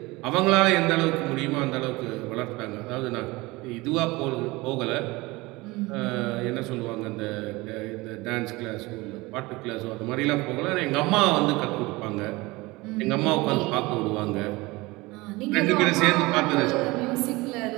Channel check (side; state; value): left; quieter; 22.1 dB